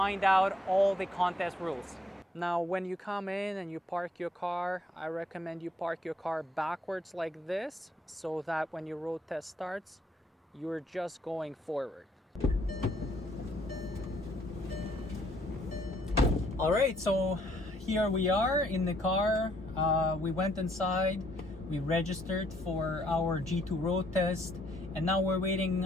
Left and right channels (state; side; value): normal; both; correlation 0.68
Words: out all the contest rules. Now, when you come in and you park your car, I recommend you park your car backwards like this, so that when your road test starts, you're just going forward. All right, so here we are in the car. We went inside, we registered for our G2 road test, and now we're waiting